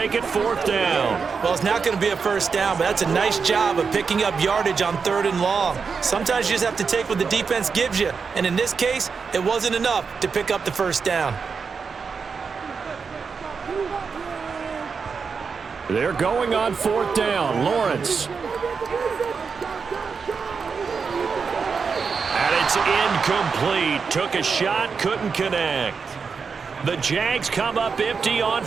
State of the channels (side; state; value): left; quieter; 5.5 dB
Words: it 4th down. Well, it's not going to be a 1st down, but that's a nice job of picking up yardage on 3rd and long. Sometimes you just have to take what the defense gives you, and in this case, it wasn't enough to pick up the 1st down. They're going on 4th down. Lawrence. And it's incomplete. Took a shot, couldn't connect. The Jags come up empty on